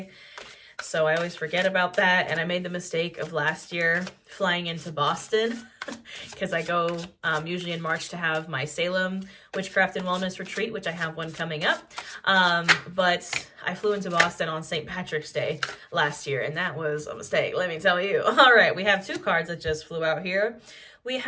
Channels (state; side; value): identical; both; correlation 1.00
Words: So I always forget about that. And I made the mistake of last year flying into Boston because I go usually in March to have my Salem Witchcraft and Wellness Retreat, which I have one coming up. But I flew into Boston on St. Patrick's Day last year, and that was a mistake, let me tell you. All right, we have two cards that just flew out here. We